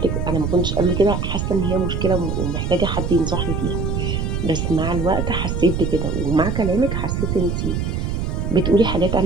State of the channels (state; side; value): noise; right; rumble, 1 dB below the sound